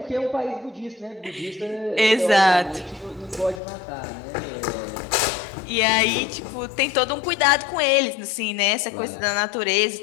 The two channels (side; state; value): right; drops out; at 3.6 s